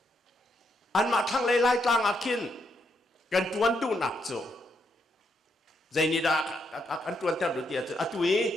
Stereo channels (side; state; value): both; normal; correlation 0.78